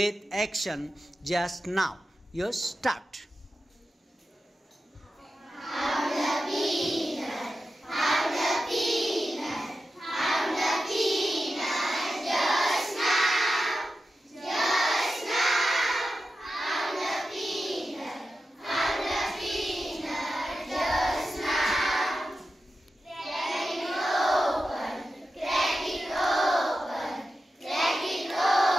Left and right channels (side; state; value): both; normal; correlation 0.92